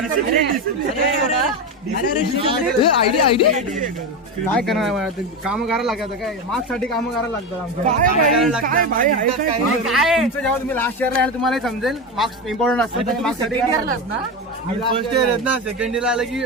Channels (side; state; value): both; normal; correlation 0.18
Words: आयडी काय करणार काम करायला लागतं काय मार्क्स साठी काम करायला लागतं तुमचं जेव्हा तुम्ही लास्ट इयरला याल तुम्हाला समजेल मार्क्स इम्पॉर्टंट असतं मार्क्स साठी फर्स्ट इयर आहेत ना सेकंड इयर आलं की